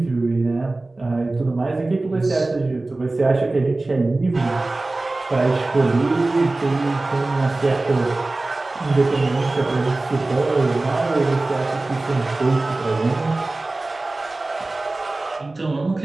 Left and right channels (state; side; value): quieter; left; 3.0 dB